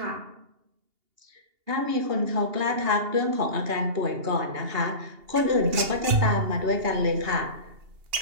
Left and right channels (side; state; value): left; late; 2.8 ms